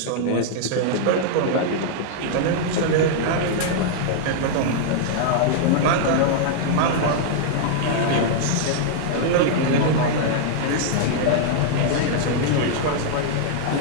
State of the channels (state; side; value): different; both; correlation -0.01